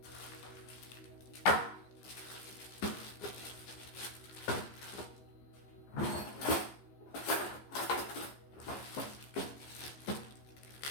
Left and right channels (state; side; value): late; right; 15 ms